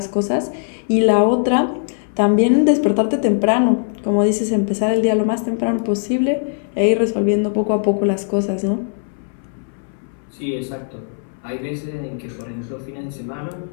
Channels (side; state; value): right; silent; 62 dB below the other